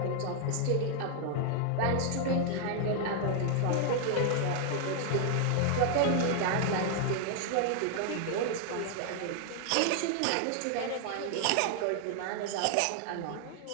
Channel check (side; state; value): both; different; correlation 0.00